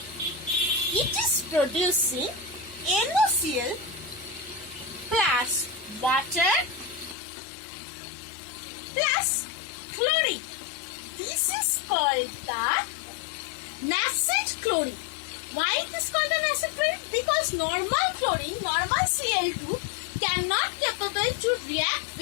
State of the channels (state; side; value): drops out; right; at 7.2 s